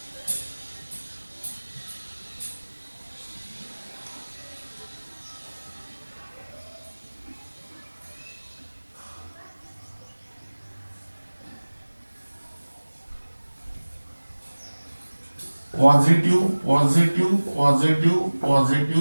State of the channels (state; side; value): inverted; both; correlation -1.00